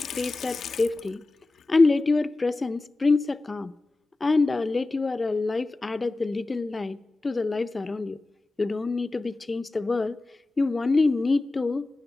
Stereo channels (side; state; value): right; quieter; 3.1 dB